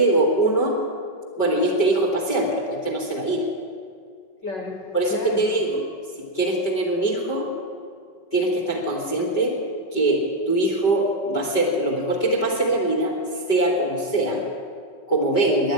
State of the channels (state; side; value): late; right; 5.1 ms